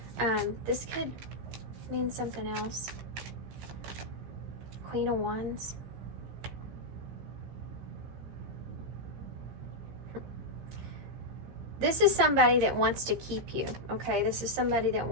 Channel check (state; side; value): late; left; 15 ms